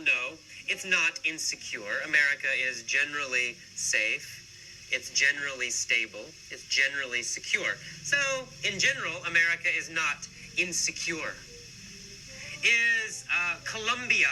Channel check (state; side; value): identical; both; correlation 1.00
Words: It's not insecure. America is generally safe. It's generally stable. It's generally secure. So, in general, America is not insecure. Is Colombia